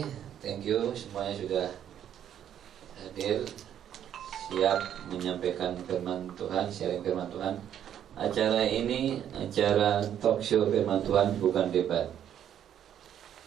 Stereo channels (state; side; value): quieter; left; 10.0 dB